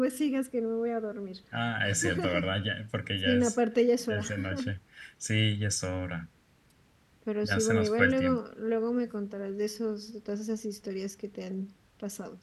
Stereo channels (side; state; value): both; identical; correlation 1.00